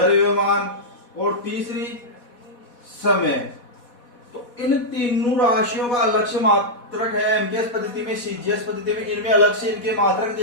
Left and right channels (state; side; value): late; right; 4.1 ms